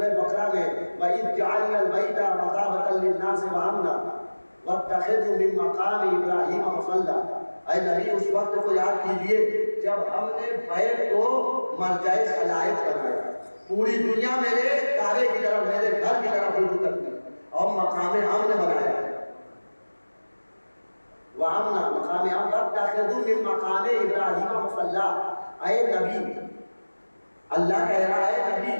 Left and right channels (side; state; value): both; inverted; correlation -1.00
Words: بقرہ میں وَإِذْ جَعَلْنَا الْبَيْتَ مَثَابَةً لِلنَّاسِ وَأَمْنًا وَاتَّخِذُوا مِن مَّقَامِ إِبْرَاهِيمَ مُصَلًّى. اے نبی اس وقت کو یاد کیجئے جب ہم نے بیت کو مرجع خلائق بنایا. پوری دنیا میرے کعبے کی طرف، میرے گھر کی طرف رجوع کرتی اور مقام امن بنایا. وَأَمْنًا مقام امن، وَاتَّخِذُوا مِن مَّقَامِ إِبْرَاهِيمَ مُصَلًّى. اے نبی، اللہ کہہ رہا ہے نبی